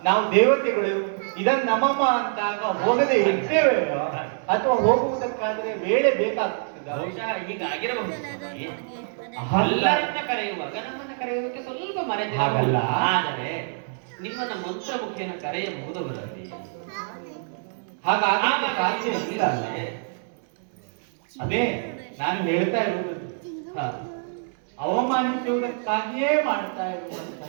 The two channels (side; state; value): left; silent; digital silence